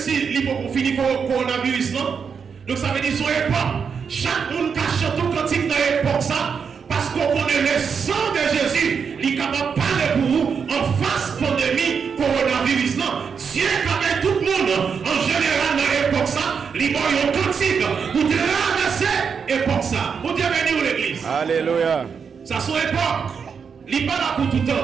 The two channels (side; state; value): left; quieter; 6.3 dB